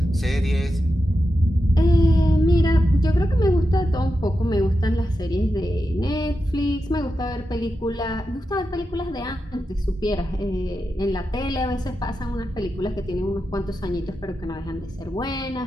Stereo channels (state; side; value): normal; both; correlation 0.89